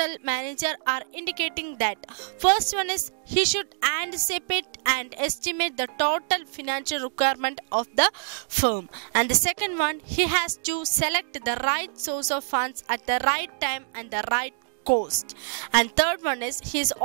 manager are indicating that first one is he should anticipate and estimate the total financial requirement of the firm, and the second one, he has to select the right source of funds at the right time and the right cost, and third one is he is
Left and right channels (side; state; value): left; silent; digital silence